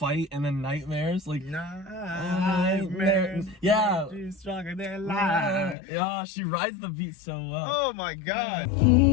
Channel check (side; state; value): right; drops out; at 5.8 s